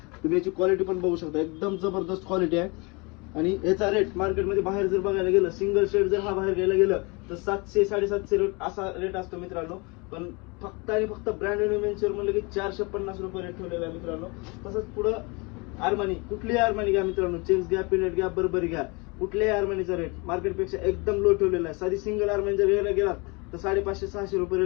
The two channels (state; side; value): quieter; right; 28.6 dB